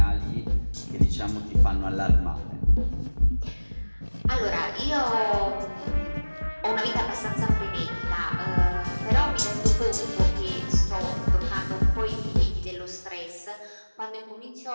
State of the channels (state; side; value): inverted; both; correlation -1.00